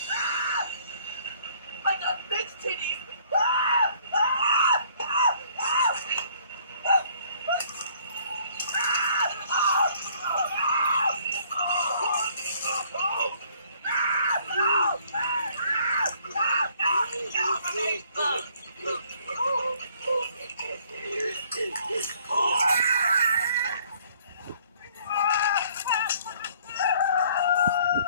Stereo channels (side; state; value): both; inverted; correlation -0.60